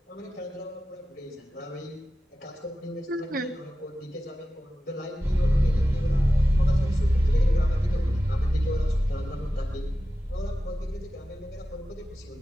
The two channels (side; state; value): both; normal; correlation 0.94